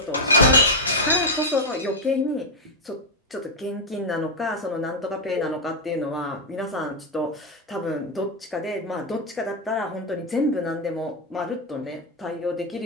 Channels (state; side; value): normal; both; correlation 0.01